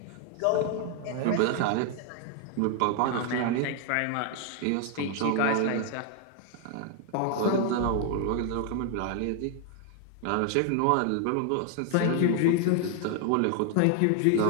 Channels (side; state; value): both; different; correlation 0.00